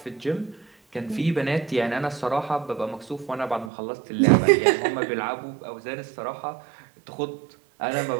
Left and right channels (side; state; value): left; drops out; at 3.7 s